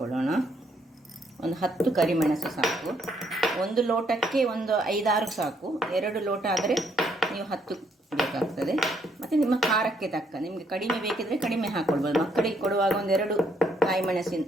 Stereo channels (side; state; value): both; normal; correlation 0.71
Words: ಒಂದು 10 ಕರಿಮೆಣಸು ಸಾಕು. 1 ಲೋಟಕ್ಕೆ ಒಂದು 5-6 ಸಾಕು. 2 ಲೋಟ ಆದರೆ ನೀವು 10 ಬೇಕಾಗ್ತದೆ. ಮತ್ತು ನಿಮ್ಮ ಖಾರಕ್ಕೆ ತಕ್ಕ, ನಿಮಗೆ ಕಡಿಮೆ ಬೇಕಿದ್ರೆ ಕಡಿಮೆ ಹಾಕ್ಕೊಳ್ಬೋದು. ಮಕ್ಕಳಿಗೆ ಕೊಡುವಾಗ 1-2 ಕಾಯಿ